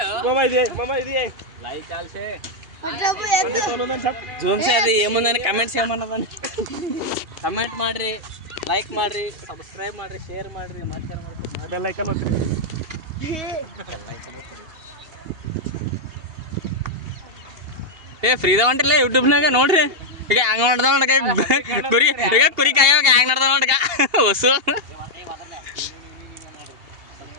ಮಾಮಾ ಇದೆ ಲೈಕ್ ಆಲ್ಸೆ ಜೂಮ್ ಸೇ ಅದು ಏಮಂದ್ರೆ ಕಮೆಂಟ್ಸ್ ಏಮನ್ನದ ಕಮೆಂಟ್ ಮಾಡ್ರಿ ಲೈಕ್ ಮಾಡ್ರಿ ಸಬ್ಸ್ಕ್ರೈಬ್ ಮಾಡ್ರಿ ಶೇರ್ ಮಾಡ್ರಿ ಬೆಲ್ ಐಕಾನ್ ಒತ್ತಿರಿ ಏ ಫ್ರೀದ ಹೊಂಟಿಲ್ಲ ಯೂಟ್ಯೂಬ್ನಾಗ ನೋಡ್ರಿ ಈಗ ಹಂಗ ಮಾಡ್ದ ನೋಡ್ಕ ಕುರಿ ಈಗ ಕುರಿ ಕಾಯೋಗ ಹ್ಯಾಂಗ ನಡ್ದ ನೋಡ್ಕ ಹೊಸು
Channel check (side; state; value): left; late; 2.8 ms